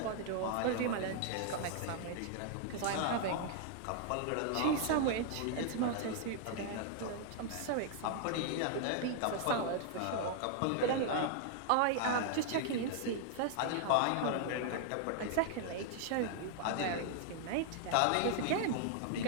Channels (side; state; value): both; different; correlation 0.00